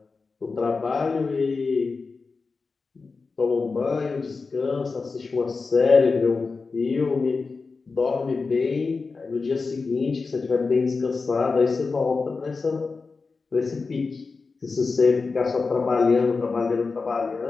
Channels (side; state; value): right; quieter; 4.3 dB